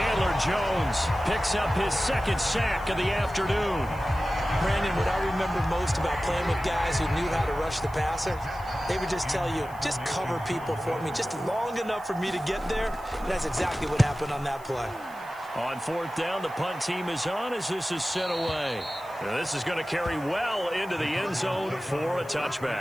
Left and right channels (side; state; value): right; noise; hiss, 24 dB below the sound